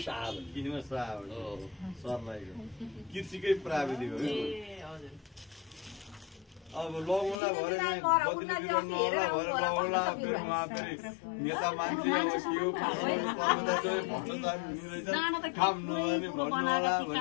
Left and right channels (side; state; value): right; drops out; at 7.4 s